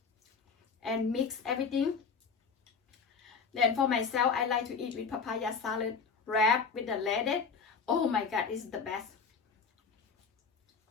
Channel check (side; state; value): right; quieter; 5.5 dB